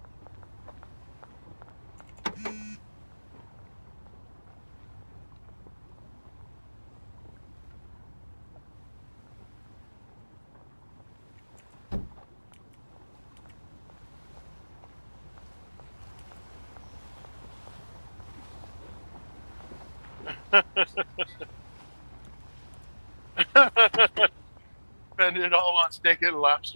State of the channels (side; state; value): both; inverted; correlation -1.00